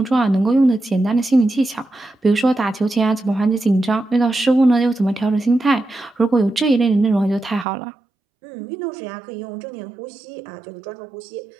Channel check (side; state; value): left; drops out; at 7.7 s